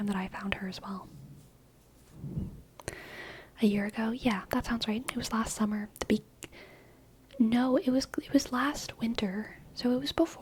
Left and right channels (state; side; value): identical; both; correlation 1.00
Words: that I found her as well. A year ago? Yeah, that sounds right. It was last summer. No, it was last winter. So it was